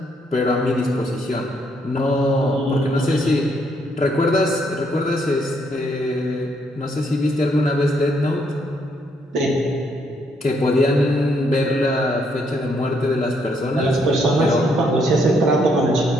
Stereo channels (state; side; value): normal; both; correlation 0.72